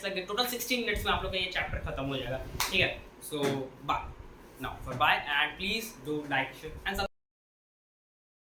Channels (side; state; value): both; identical; correlation 1.00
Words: लग गए, टोटल 60 मिनट्स में आप लोग का ये चैप्टर खत्म हो जाएगा। ठीक है, so bye now, for bye, and please do like share and